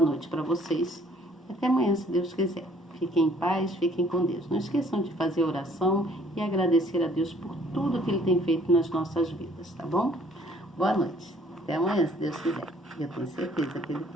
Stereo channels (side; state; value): both; normal; correlation 0.59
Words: noite para vocês. Até amanhã, se Deus quiser. Fiquem em paz, fiquem com Deus. Não esqueçam de fazer oração e agradecer a Deus por tudo que Ele tem feito nas nossas vidas, tá bom? Boa noite. Até amanhã, se Deus quiser. Eu tenho certeza que Ele